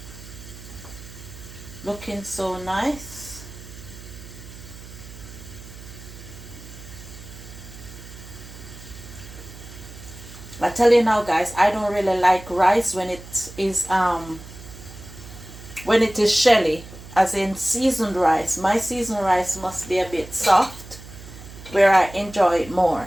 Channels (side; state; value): right; noise; hum, 16 dB below the sound